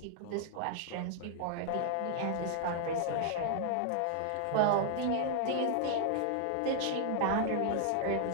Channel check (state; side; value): different; both; correlation 0.00